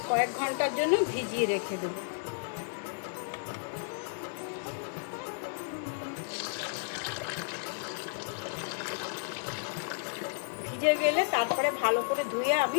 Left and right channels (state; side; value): silent; right; digital silence